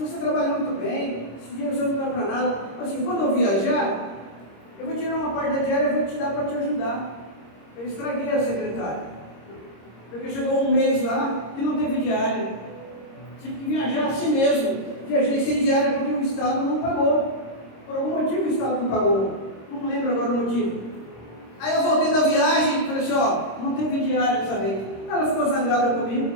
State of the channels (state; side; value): late; right; 26 ms